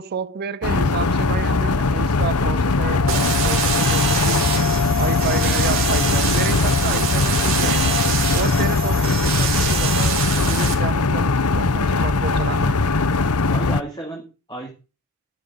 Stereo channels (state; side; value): normal; both; correlation 0.35